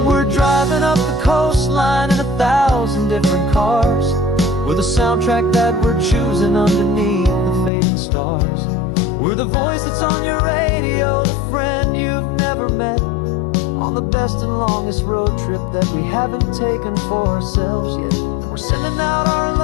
we're driving up the coastline in 1,000 different cars, We're the soundtrack that we're choosing underneath the fading stars. We're the voice that's on your radio, the friend you've never met, on the best and longest road trip that we haven't taken for ourselves yet. And we're sending out our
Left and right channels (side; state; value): right; drops out; at 7.7 s